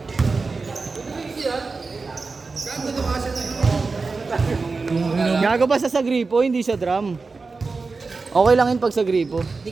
Gago ba sa gripo, hindi sa drum. Okay lang yun pag sa gripo. Hindi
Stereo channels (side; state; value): left; quieter; 4.2 dB